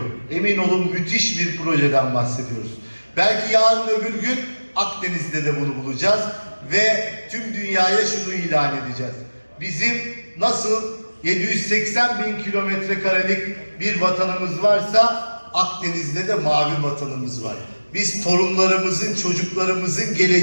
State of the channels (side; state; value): both; inverted; correlation -1.00